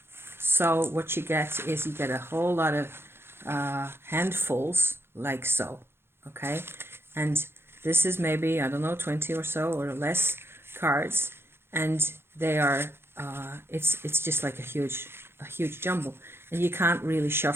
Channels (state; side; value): late; left; 0.11 ms